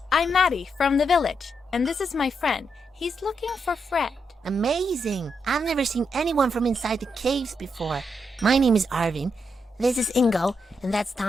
I'm Maddie from the village, and this is my friend. He's looking for Fred. Amazing! I've never seen anyone from inside the caves before. My name is Arvin. This is Ingo, and that's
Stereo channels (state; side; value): normal; both; correlation 0.81